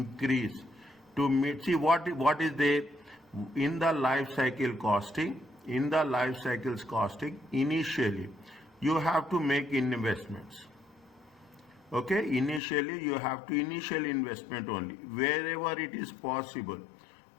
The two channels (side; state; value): right; drops out; at 12.6 s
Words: to meet. See what is there in the life cycle costing. In the life cycles costing, initially you have to make investments. Okay, initially you have to initial investment only wherever it is possible.